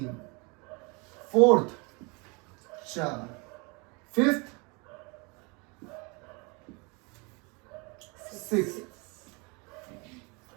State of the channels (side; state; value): left; quieter; 29.7 dB